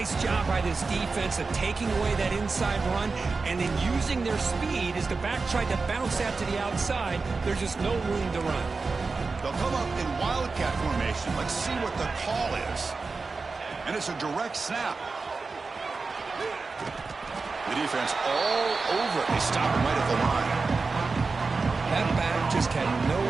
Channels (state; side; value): quieter; left; 4.2 dB